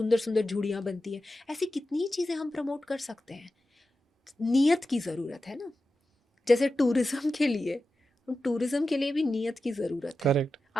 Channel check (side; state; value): both; normal; correlation 0.92